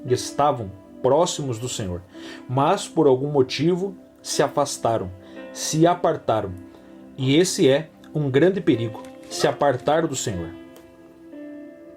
próximos do Senhor, mas por algum motivo se afastaram, se apartaram. E esse é um grande perigo, se apartar do Senhor,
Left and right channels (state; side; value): identical; both; correlation 1.00